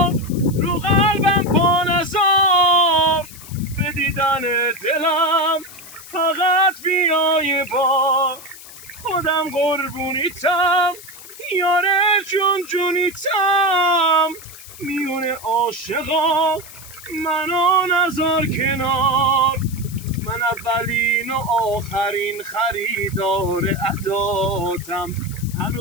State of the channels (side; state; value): left; noise; hiss, 17 dB below the sound